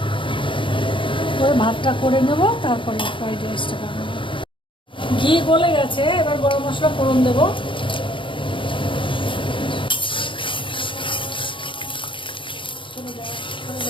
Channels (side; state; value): right; late; 0.25 ms